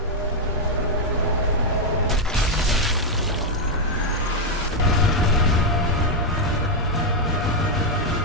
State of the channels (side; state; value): both; normal; correlation 0.00